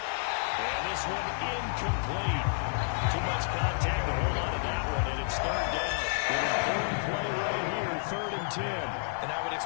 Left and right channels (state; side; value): silent; right; digital silence